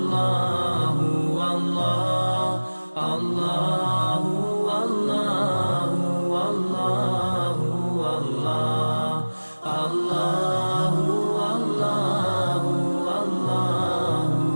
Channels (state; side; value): inverted; both; correlation -1.00